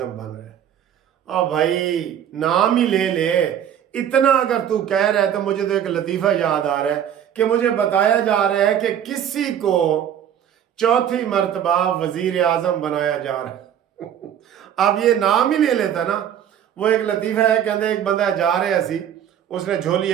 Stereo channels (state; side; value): quieter; left; 9.7 dB